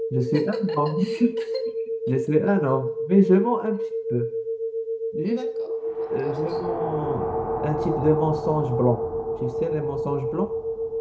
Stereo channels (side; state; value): both; identical; correlation 1.00